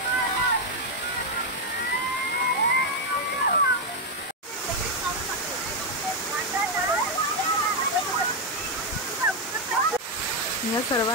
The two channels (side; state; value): both; normal; correlation 0.02